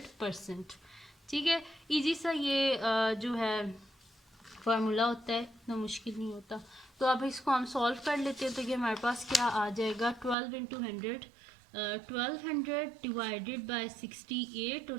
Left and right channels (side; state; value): left; drops out; at 10.4 s